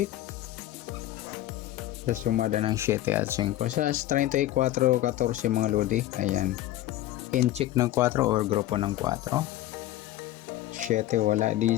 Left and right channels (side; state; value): right; quieter; 14.7 dB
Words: sa sumada ng 7 at 5. Sa 34, 14 mga lodi, ayan, inchik ng 4 or grupo ng 4. 7 wala,